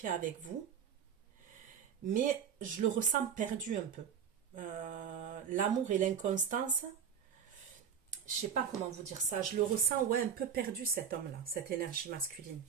avec vous. Mais je le ressens perdu un peu. L'amour et l'inconstance, je sais pas comment vous dire ça, je le ressens un peu perdu, cet homme-là, cette énergie masculine.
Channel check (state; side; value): quieter; left; 7.9 dB